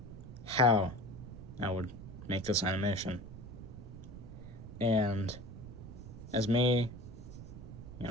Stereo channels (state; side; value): noise; right; rumble, 12 dB below the sound